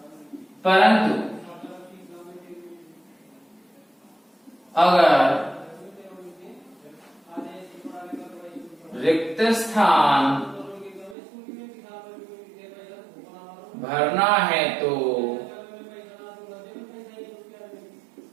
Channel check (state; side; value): drops out; left; at 11.2 s